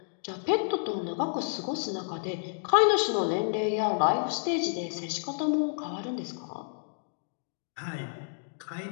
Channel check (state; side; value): silent; right; digital silence